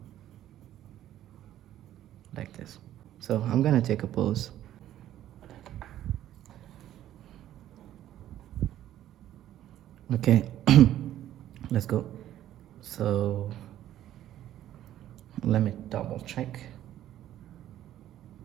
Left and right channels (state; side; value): quieter; left; 12.4 dB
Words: like this. So I'm gonna take a pause. Okay, let's go. So let me double check